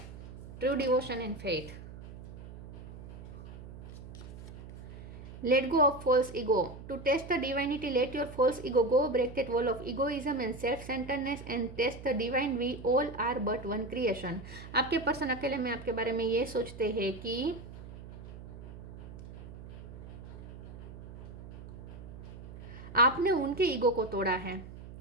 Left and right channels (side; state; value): right; noise; hum, 13 dB below the sound